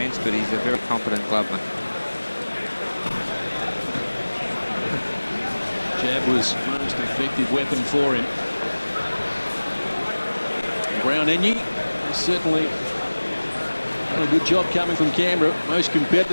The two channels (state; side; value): inverted; both; correlation -1.00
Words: but he's a very competent clubman. Jab was most effective weapon for him. Enyi has certainly done a good job coming from Canberra. Most